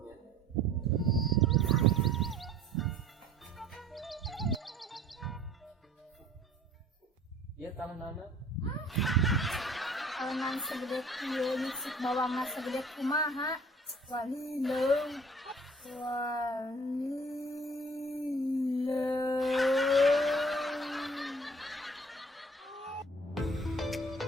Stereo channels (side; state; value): both; normal; correlation 0.51